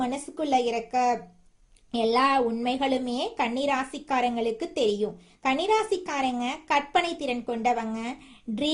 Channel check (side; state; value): both; identical; correlation 1.00